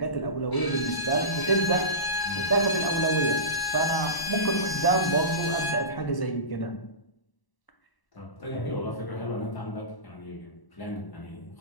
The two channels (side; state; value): right; late; 1.0 ms